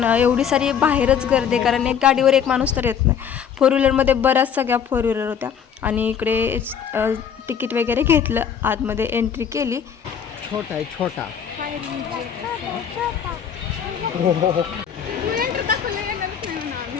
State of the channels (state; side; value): quieter; right; 7.9 dB